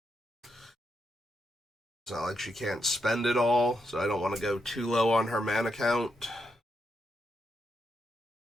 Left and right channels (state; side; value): normal; both; correlation 0.82